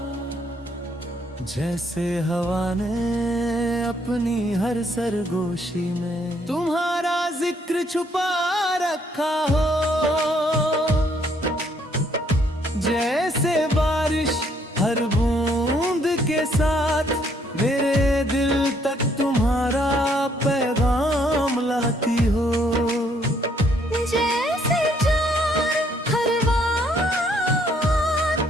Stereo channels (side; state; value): both; normal; correlation 0.68